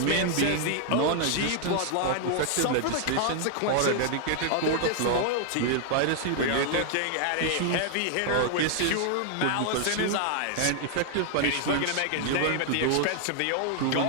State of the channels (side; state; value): both; different; correlation 0.00